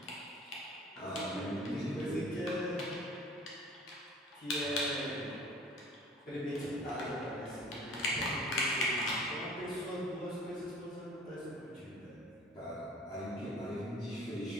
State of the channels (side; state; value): both; normal; correlation 0.47